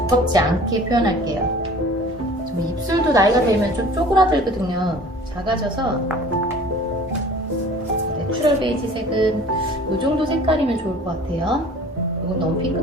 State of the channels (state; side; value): normal; both; correlation 0.46